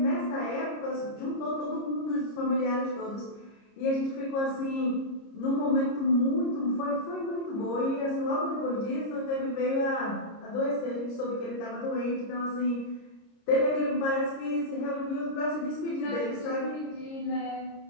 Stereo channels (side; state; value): right; late; 30 ms